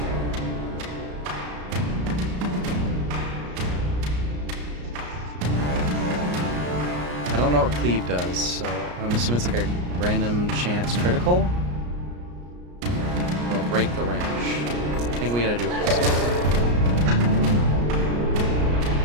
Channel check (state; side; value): late; left; 34 ms